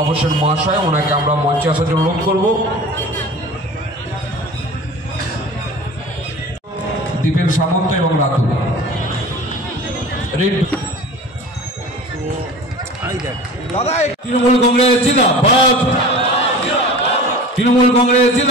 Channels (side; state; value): both; normal; correlation 0.39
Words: হোসেন মহাশয়। ওনাকে আমরা মঞ্চে আসার জন্য অনুরোধ করব। দীপেন সামন্ত এবং রাতুল তৃণমূল কংগ্রেস জিন্দাবাদ, তৃণমূল কংগ্রেস